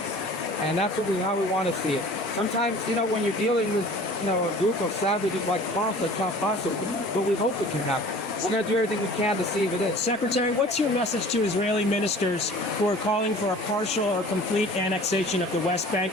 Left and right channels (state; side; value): normal; both; correlation 0.45